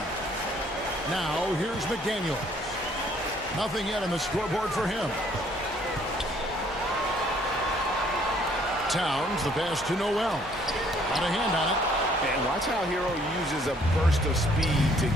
Now, here's McDaniels. Nothing yet on the scoreboard for him. Towns, the pass to Noel. Got a hand on it. And watch how Hero uses a burst of speed to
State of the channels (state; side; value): normal; both; correlation 0.62